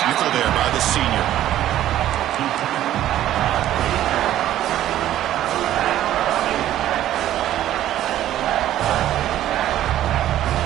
there by the senior.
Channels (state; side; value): quieter; left; 12.8 dB